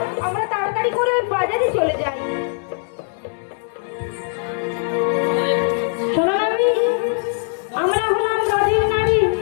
আমরা তাড়াতাড়ি করে ওই বাজারে চলে যাই। শোনো নাভি, আমরা হলাম নদীর নারী।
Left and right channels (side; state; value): right; silent; 59 dB below the other